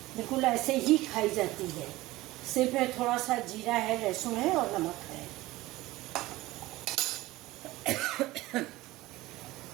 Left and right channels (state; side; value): quieter; left; 18.6 dB